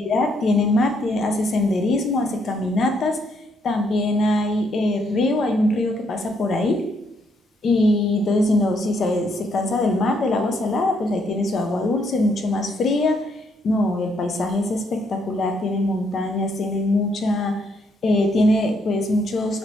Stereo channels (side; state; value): both; normal; correlation 0.73